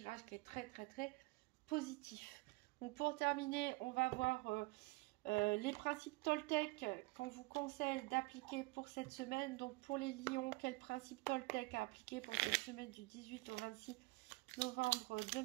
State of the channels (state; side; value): quieter; left; 24.4 dB